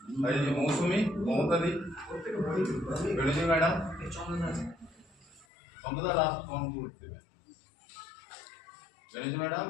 এই যে মৌসুমী, মমতাদি, বেরোজি ম্যাডাম, চন্দ্রদা লাস্ট ফোন করতে দেবে। বেরোজি ম্যাডাম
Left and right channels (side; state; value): right; drops out; at 5.5 s